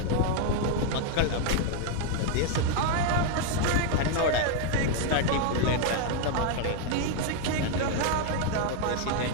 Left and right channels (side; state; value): both; different; correlation 0.00